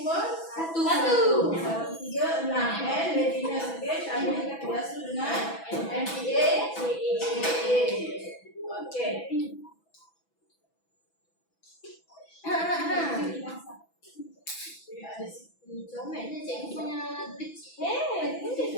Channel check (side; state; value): right; late; 6.0 ms